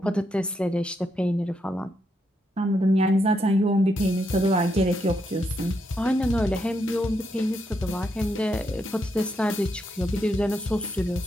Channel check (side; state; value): both; normal; correlation 0.80